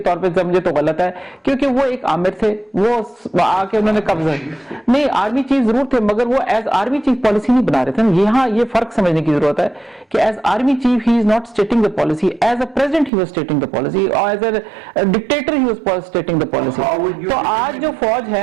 طور پہ سمجھے تو غلط ہے, کیونکہ وہ ایک آمر تھے, وہ آ کے انہوں نے قبضہ نہیں, آرمی چیف ضرور تھے, مگر وہ ایز آرمی چیف پالیسی نہیں بنا رہے تھے. یہاں یہ فرق سمجھنے کی ضرورت ہے کہ as army chief he is not stating the policy, as a president he was stating the policy, اور as a dictator he was stating the policy. تو آج جو فوج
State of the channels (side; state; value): left; drops out; at 13.1 s